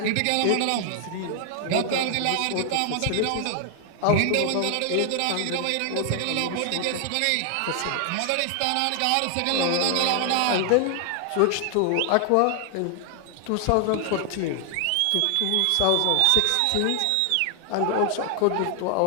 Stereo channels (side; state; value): both; different; correlation 0.00